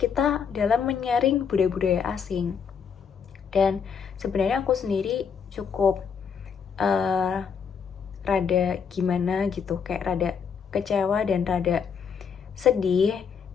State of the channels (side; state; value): right; quieter; 6.7 dB